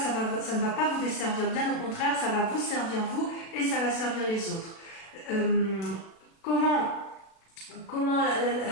va pas vous desservir, bien au contraire, ça va vous servir vous, et ça va servir les autres. Comment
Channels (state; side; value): late; right; 36 ms